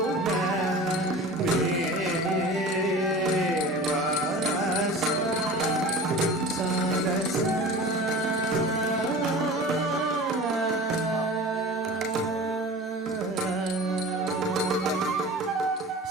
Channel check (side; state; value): both; normal; correlation 0.37